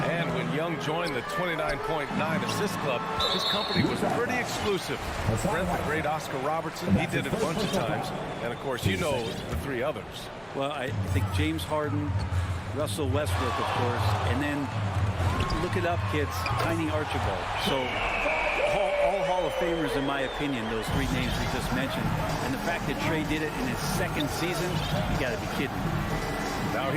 And when Young joined the 29.9 assist club, his company was pretty exclusive. Friend the great Oscar Robertson, he did it a bunch of times. And of course, you know the 3 others. Well, I think James Harden, Russell Westbrook, of course, and then look it up, kids, Tiny Archibald. So all Hall of Famers, in my opinion, those 3 names we just mentioned. And the fact that Trae did it in his 2nd season, you got to be kidding me. Now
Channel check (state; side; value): identical; both; correlation 1.00